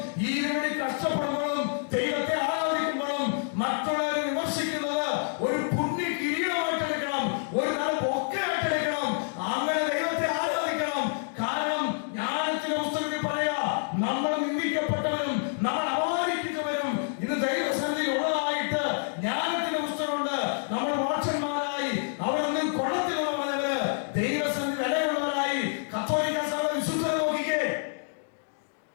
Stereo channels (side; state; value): right; silent; digital silence